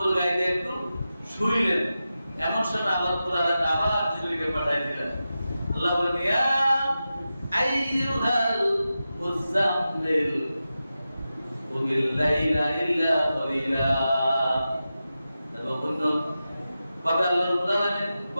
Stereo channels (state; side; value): inverted; both; correlation -0.92